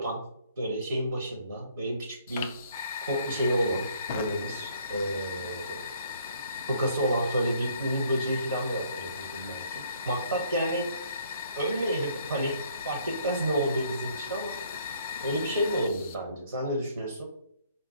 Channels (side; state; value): both; inverted; correlation -0.63